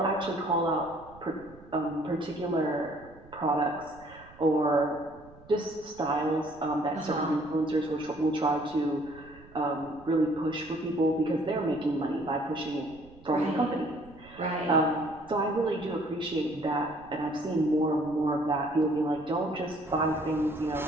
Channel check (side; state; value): right; noise; rumble, 22 dB below the sound